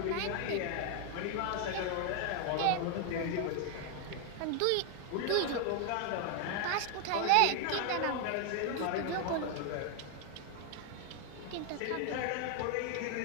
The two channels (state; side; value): different; both; correlation 0.00